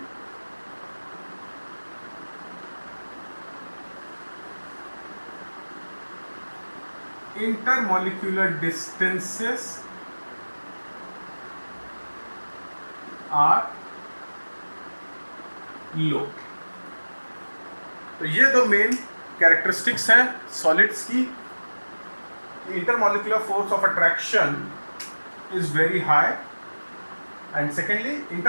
intermolecular distances are low। तो ये दो मेन कैरेक्टरिस्टिक्स हैं सॉलिड्स की। Intermolecular force of attraction is very high, and secondly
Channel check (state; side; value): inverted; both; correlation -1.00